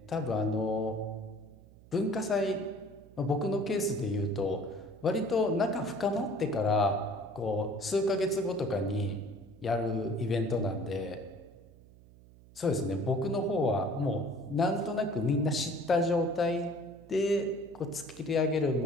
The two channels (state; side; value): noise; right; hum, 23 dB below the sound